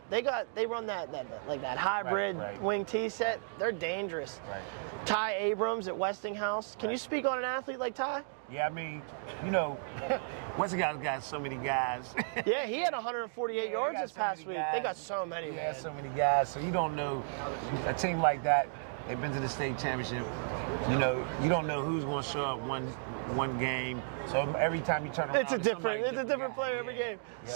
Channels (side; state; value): left; silent; digital silence